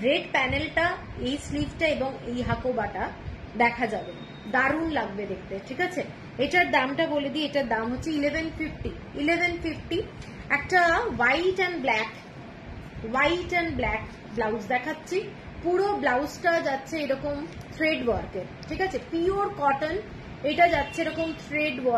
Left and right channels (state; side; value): identical; both; correlation 1.00